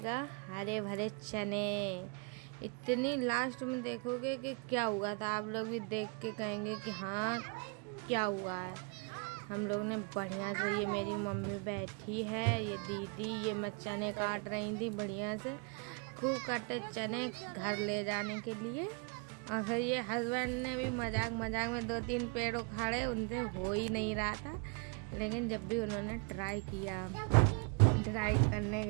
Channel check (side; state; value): left; quieter; 33.6 dB